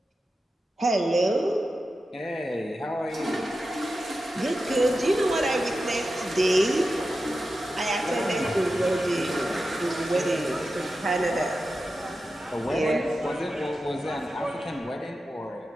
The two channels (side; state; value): both; normal; correlation 0.91